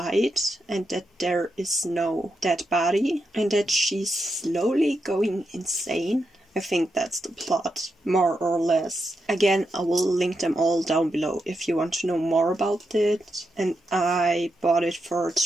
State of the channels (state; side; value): normal; both; correlation 0.85